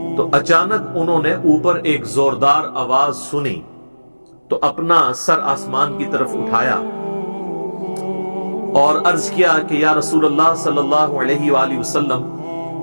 تو اچانک انہوں نے اوپر ایک زوردار آواز سنی تو اپنا سر آسمان کی طرف اٹھایا اور عرض کیا کہ یا رسول اللہ صلی اللہ علیہ وآلہ وسلم،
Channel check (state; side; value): inverted; both; correlation -1.00